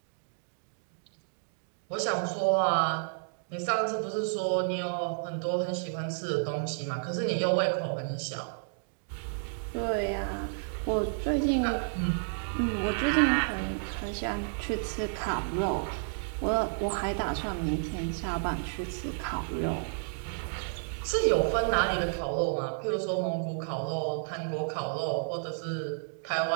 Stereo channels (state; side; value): silent; left; digital silence